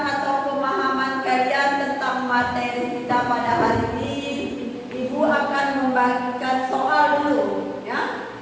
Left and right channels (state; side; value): identical; both; correlation 1.00